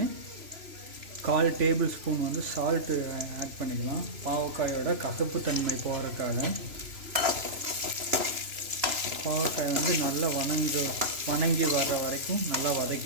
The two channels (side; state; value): left; late; 3.0 ms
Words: 1/4 டேபிள் ஸ்பூன் வந்து சால்ட்டு ஆட் பண்ணிக்கலாம். பாவக்காயோட கசப்பு தன்மை போகிறதுக்காக. பாவக்காய் வந்து நல்லா வணங்கி வர்ற வரைக்கும் நல்லா